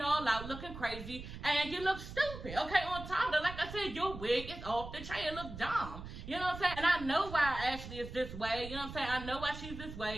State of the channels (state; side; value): noise; right; rumble, 11 dB below the sound